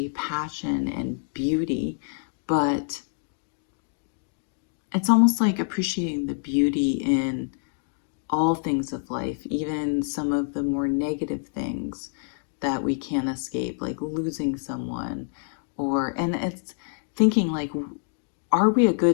passion and beauty, but it's almost like appreciating the beauty in all things of life, even some of the more negative things that we can't escape, like losing someone, and it's thinking like, are we a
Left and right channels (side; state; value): right; silent; digital silence